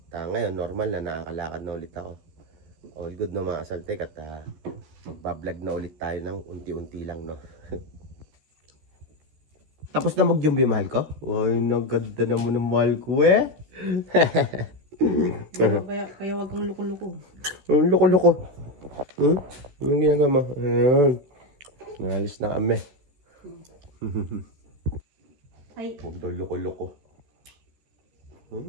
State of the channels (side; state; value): left; late; 13 ms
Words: Ngayon, normal na nakakalakad na ulit ako. All good, no, mga kasaltik. At magbablog na ulit tayo ng unti-unti lang, no? Tapos na mag-jumbi, mahal ko? Wow, naganda naman ng mahal ko, eh. Kaya wag kang luko-luko. Luko-luko. Anong ginagawa mo? Ayan. Nahalis na kami. Ay. Huwag daw luko-luko.